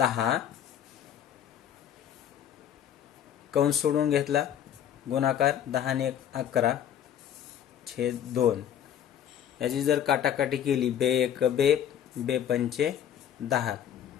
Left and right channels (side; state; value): right; quieter; 9.7 dB